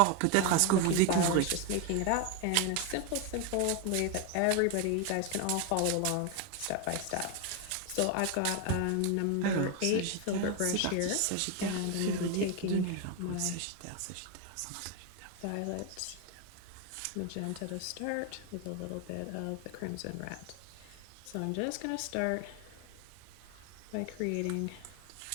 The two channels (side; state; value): both; different; correlation 0.01